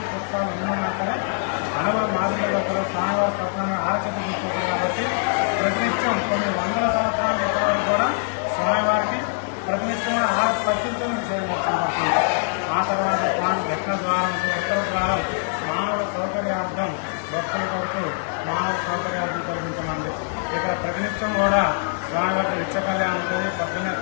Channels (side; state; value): right; silent; 63 dB below the other